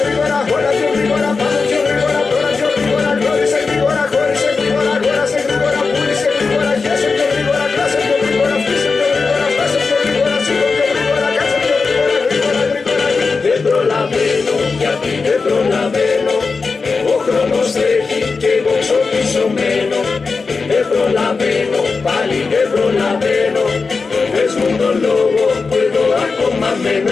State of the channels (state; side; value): quieter; right; 4.5 dB